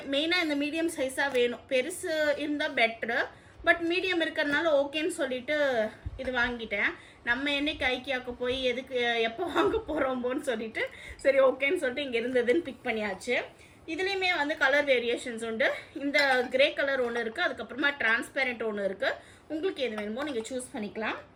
மெயினாக இந்த மீடியம் சைஸாக வேணும். பெருசு இருந்தால் பெட்ரு, பட் மீடியம் இருக்கிறதுனால ஓகேன்னு சொல்லிட்டு இது வாங்கிட்டேன். நம்ம என்னைக்கு ஐக்கியாவுக்கு போய் எதுக்கு எப்போ வாங்க போகிறோம்போன்னு சொல்லிட்டு சரி ஓகேன்னு சொல்லிட்டு இங்கே இருந்ததுன்னு பிக் பண்ணியாச்சு. இதுலேயுமே வந்து கலர் வேரியேஷன்ஸ் உண்டு. இந்த கிரே கலர் ஒன்று இருக்குது, அதுக்கப்புறமா டிரான்ஸ்பேரண்ட் ஒன்று இருக்குது. உங்களுக்கு எது வேணுமோ நீங்கள் சூஸ் பண்ணிக்கலாம்.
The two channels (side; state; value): both; identical; correlation 1.00